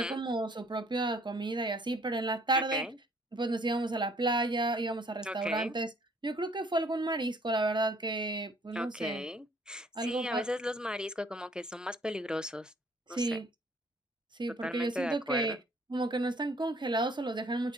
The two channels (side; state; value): both; normal; correlation 0.60